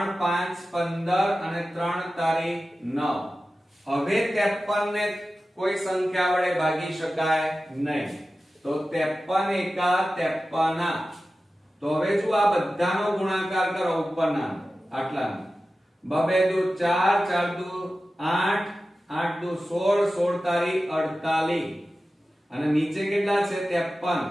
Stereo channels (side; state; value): both; normal; correlation 0.94